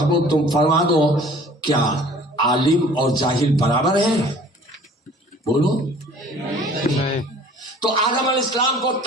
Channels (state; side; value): normal; both; correlation 0.51